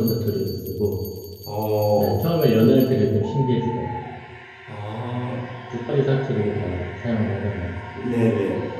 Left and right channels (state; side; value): identical; both; correlation 1.00